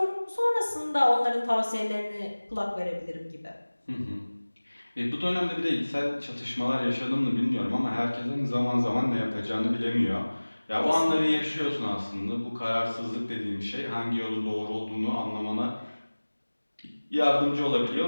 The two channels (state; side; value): inverted; both; correlation -1.00